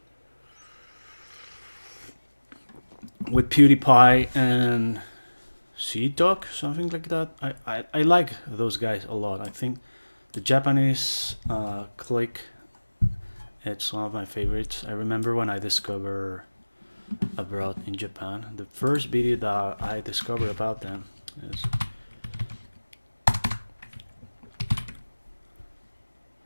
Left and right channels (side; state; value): both; inverted; correlation -1.00